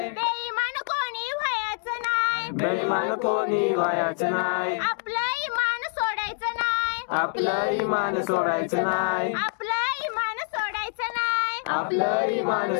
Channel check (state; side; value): silent; right; digital silence